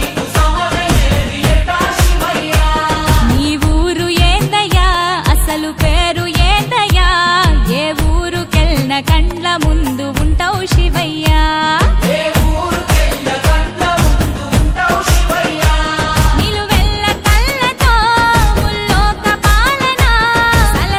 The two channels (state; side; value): identical; both; correlation 1.00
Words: నీ ఊరు ఏందయ్యా అసలు పేరు ఏందయ్యా ఏ ఊరుకెళ్ళిన కండ్ల ముందు ఉంటావు శివయ్యా నిలువెల్ల కళ్ళతో ముల్లోక పాలన